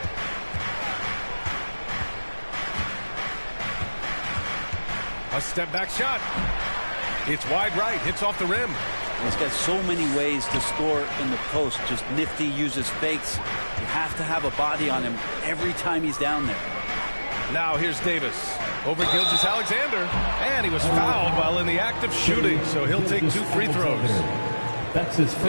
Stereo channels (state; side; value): inverted; both; correlation -1.00